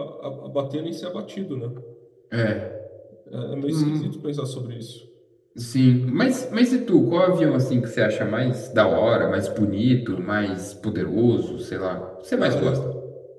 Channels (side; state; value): both; identical; correlation 1.00